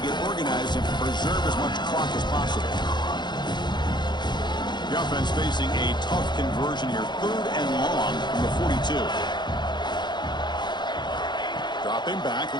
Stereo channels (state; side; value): late; right; 0.21 ms